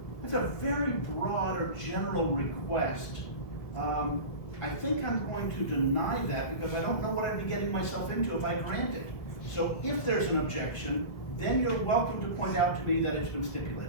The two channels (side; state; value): right; late; 1.7 ms